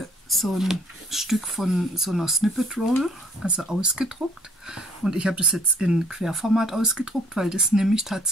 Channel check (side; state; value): both; normal; correlation 0.59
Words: so ein Stück von so einer Snippet Roll, also ausgedruckt. Und ich habe das jetzt in Querformat ausgedruckt, weil das nehme ich